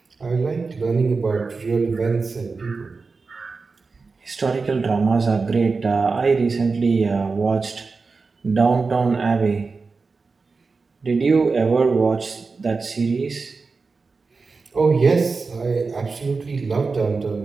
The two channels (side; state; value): left; quieter; 4.3 dB